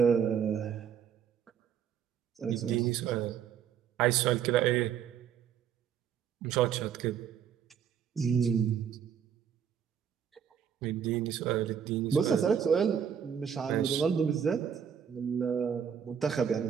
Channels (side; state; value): left; quieter; 8.0 dB